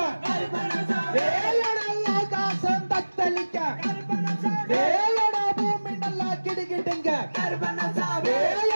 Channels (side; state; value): both; inverted; correlation -1.00